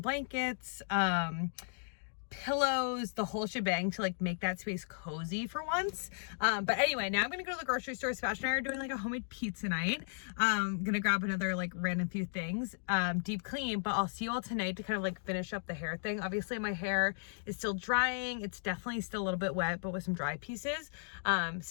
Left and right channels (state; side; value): silent; right; digital silence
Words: pillows, the whole shebang to like make that space cozy for once. But anyway, now I'm gonna go to the grocery store. Sebastian and I are doing like a homemade pizza night. Gonna grab another like random few things, deep clean, but I'll see you all tonight to kind of like finish up the hair thing. Obviously my hair is still drying. It's definitely still a little bit wet, but with some dry pieces.